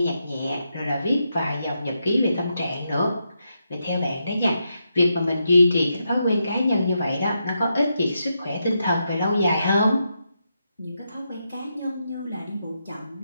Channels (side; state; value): both; inverted; correlation -0.84